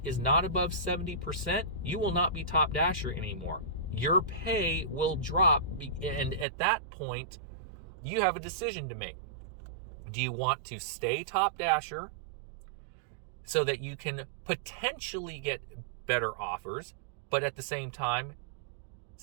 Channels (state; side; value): drops out; left; at 6.5 s